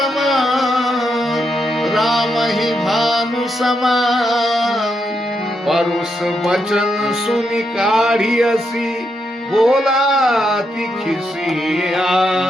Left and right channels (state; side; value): normal; both; correlation 0.81